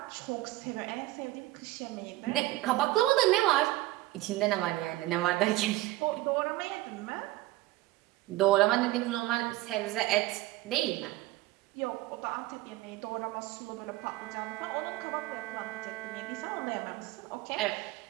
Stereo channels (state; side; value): quieter; left; 17.9 dB